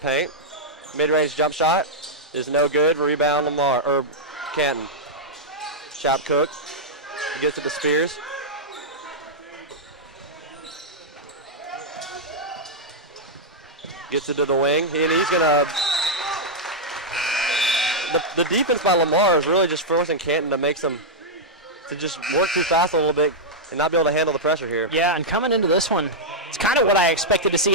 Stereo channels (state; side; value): normal; both; correlation -0.06